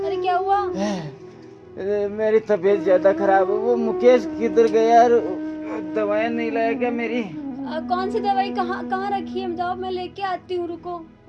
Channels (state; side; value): identical; both; correlation 1.00